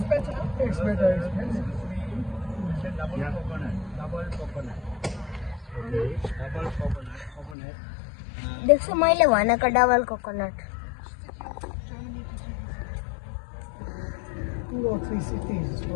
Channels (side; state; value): right; drops out; at 7.6 s